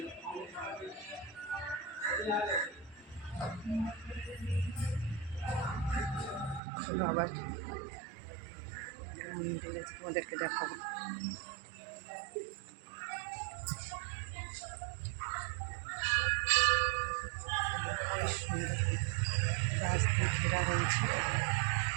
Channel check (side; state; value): left; drops out; at 6.6 s